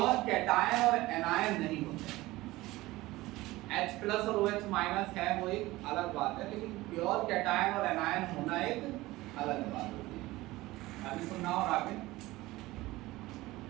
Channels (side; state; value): left; quieter; 18.8 dB